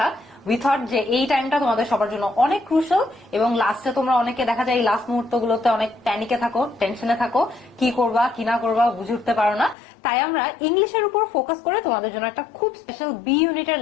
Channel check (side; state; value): right; drops out; at 9.8 s